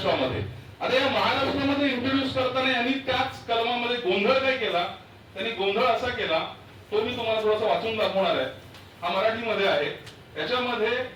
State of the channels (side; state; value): both; identical; correlation 1.00